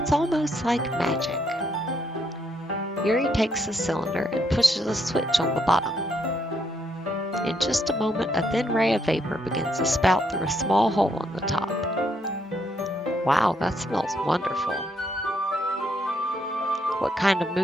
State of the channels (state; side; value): normal; both; correlation 0.74